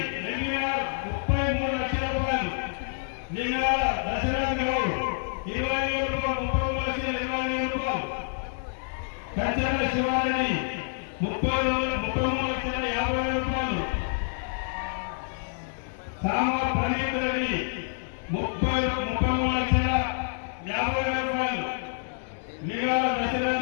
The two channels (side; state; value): right; silent; 60 dB below the other